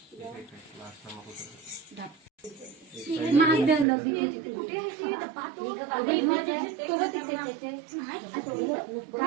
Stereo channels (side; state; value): left; drops out; at 3.9 s